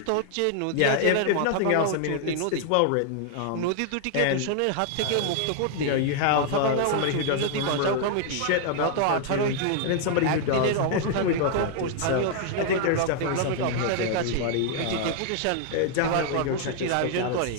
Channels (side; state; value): both; different; correlation 0.00